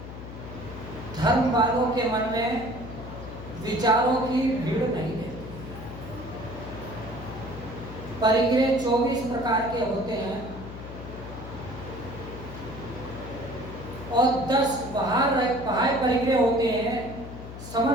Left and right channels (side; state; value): left; noise; hum, 11 dB below the sound